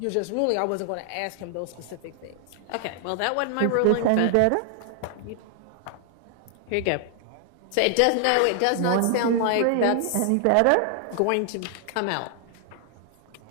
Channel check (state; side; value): different; both; correlation 0.00